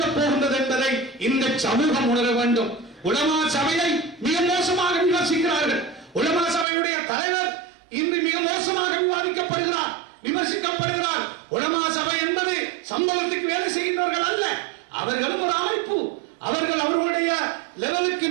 போகின்றது என்பதை இந்த சமூகம் உணர வேண்டும். உலமா சபையை மிக மோசமாக விமர்சிக்கிறார்கள். உலமா சபையுடைய தலைவர் இன்று மிக மோசமாக விவாதிக்கப்படுகிறார், விமர்சிக்கப்படுகிறார். உலமா சபை என்பது சம்பவத்துக்கு வேலை செய்கின்றவர்கள் அல்ல. அவர்களும் ஒரு அமைப்பு. அவர்கள் அவர்களுடைய லெவலுக்கு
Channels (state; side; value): drops out; left; at 6.7 s